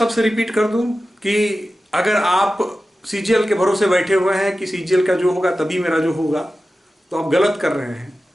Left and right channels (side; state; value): both; normal; correlation 0.94